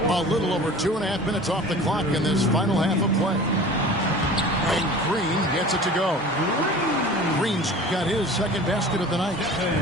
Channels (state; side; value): normal; both; correlation 0.41